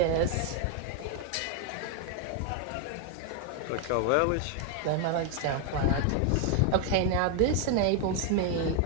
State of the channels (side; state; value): both; different; correlation 0.01